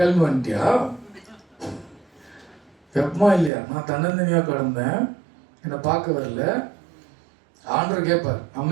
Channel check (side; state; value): left; drops out; at 3.5 s